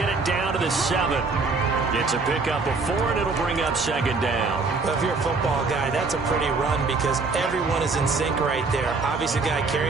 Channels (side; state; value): left; quieter; 4.1 dB